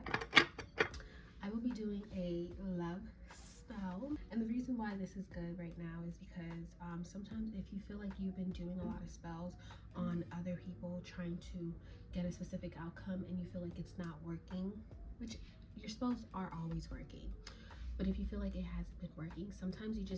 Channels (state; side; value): identical; both; correlation 1.00